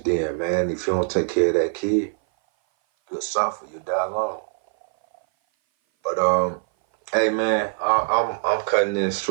then, man. If you don't take care of that kid, you'll suffer. You'll die alone. But hey, man, I'm cutting this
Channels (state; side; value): silent; left; 58 dB below the other